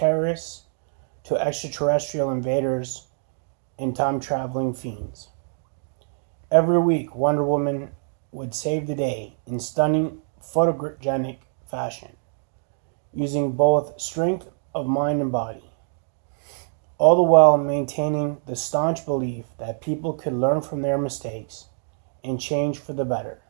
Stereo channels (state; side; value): silent; left; digital silence